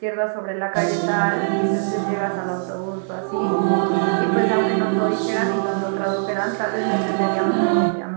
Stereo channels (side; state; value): left; silent; 65 dB below the other